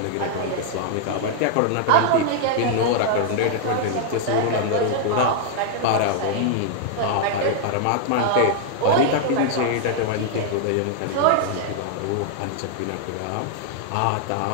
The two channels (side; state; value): both; different; correlation -0.01